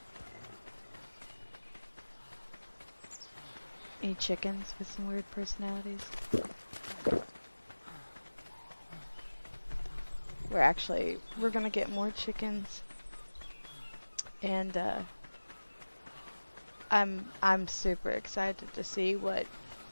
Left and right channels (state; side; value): inverted; both; correlation -1.00